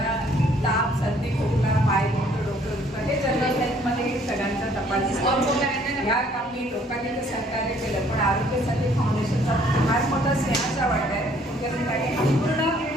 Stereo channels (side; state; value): both; normal; correlation 0.61